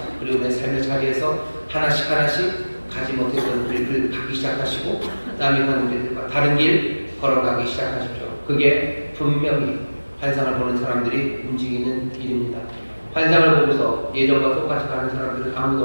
그리고 내 삶의 자리에서 하나씩 가지 못했던 길을 가기 시작하시고 남이 가는 길과 다른 길 걸어가기 시작하십시오. 그게 분명히 환상을 보는 사람들이 움직이는 일입니다. 환상을 보고서 예전과 똑같이 가는 사람들은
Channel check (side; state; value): both; inverted; correlation -1.00